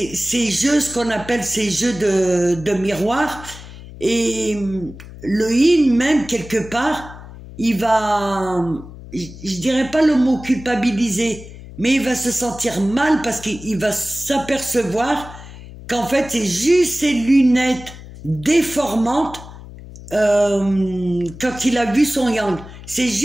jeux, ce qu'on appelle ces jeux de miroir. Et le yin, même quelque part, il va, je dirais pas le mot culpabiliser, mais il va se sentir mal parce qu'il va s'apercevoir qu'en fait c'est juste ces lunettes déformantes. Quand il a vu son yang, c'est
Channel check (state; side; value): noise; left; hum, 16 dB below the sound